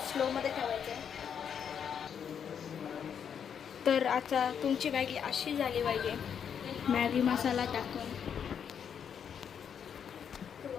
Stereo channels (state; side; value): quieter; right; 7.8 dB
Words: स्लोमध्ये ठेवायचं आहे. तर आता तुमची मॅगी अशी झाली पाहिजे मॅगी मसाला टाकून. तो